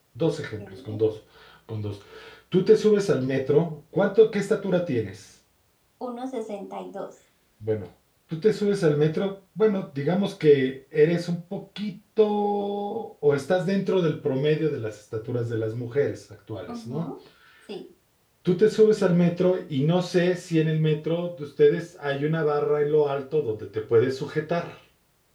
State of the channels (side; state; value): both; identical; correlation 1.00